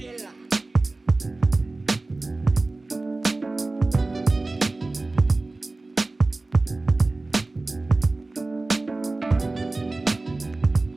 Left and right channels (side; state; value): left; quieter; 3.1 dB